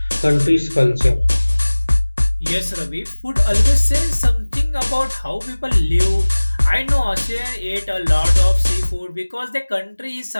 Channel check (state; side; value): inverted; both; correlation -1.00